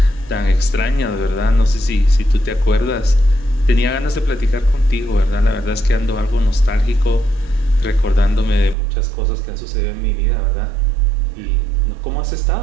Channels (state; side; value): drops out; left; at 8.8 s